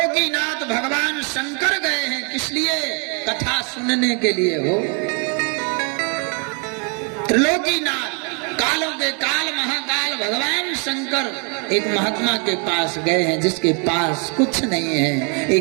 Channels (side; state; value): left; quieter; 36.5 dB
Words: भगवान शंकर गए हैं। किस लिए? कथा सुनने के लिए हो। त्रिलोकीनाथ, कालों के काल महाकाल भगवान शंकर एक महात्मा के पास गए हैं, जिसके पास कुछ नहीं है,